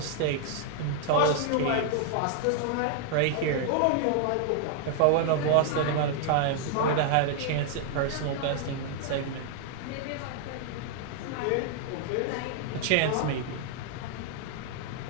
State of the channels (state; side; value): different; both; correlation 0.00